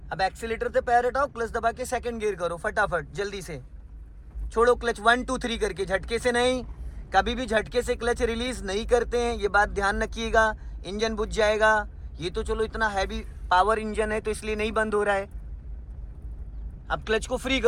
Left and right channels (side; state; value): both; identical; correlation 1.00